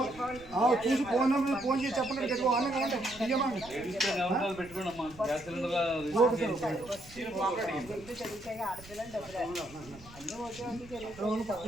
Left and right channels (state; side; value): noise; right; rumble, 20 dB below the sound